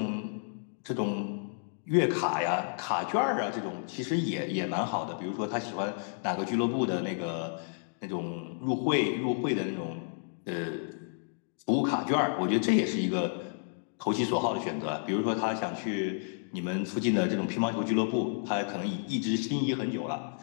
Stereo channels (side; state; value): right; silent; digital silence